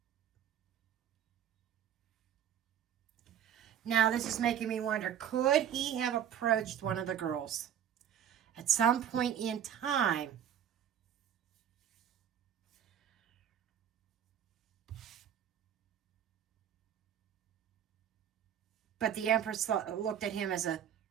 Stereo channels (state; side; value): quieter; left; 9.5 dB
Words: Now, this is making me wonder, could he have approached one of the girls at some point in time? But the Empress looked at him as a